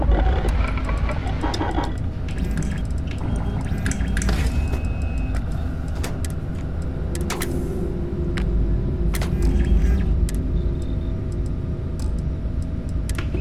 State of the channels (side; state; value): both; identical; correlation 1.00